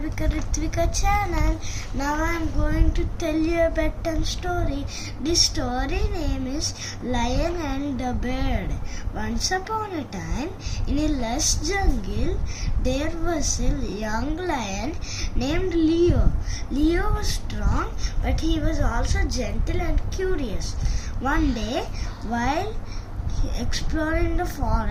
channel. Now I am going to tell you a bedtime story. This story name is Lion and the Bird. Once upon a time, in a lush jungle, there was a young lion named Leo. Leo was strong, but he was also gentle and curious. One day, while exploring the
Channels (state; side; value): identical; both; correlation 1.00